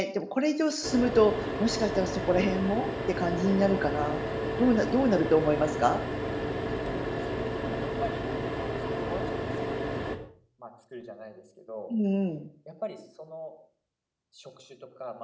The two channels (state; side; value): identical; both; correlation 1.00